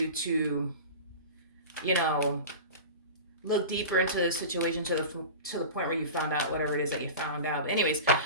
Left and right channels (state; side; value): inverted; both; correlation -0.32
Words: to, you know, look deeper into the situation to the point where you found out whatever it is that you found out. But anyways,